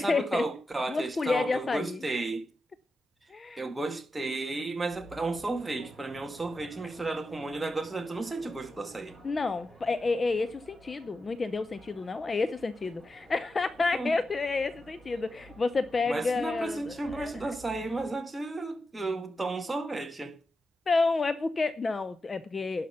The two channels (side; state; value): both; normal; correlation 0.89